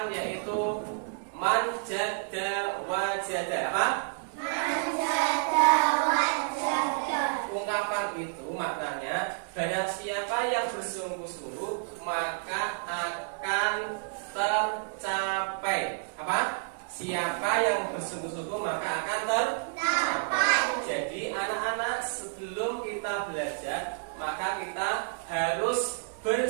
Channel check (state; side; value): silent; left; digital silence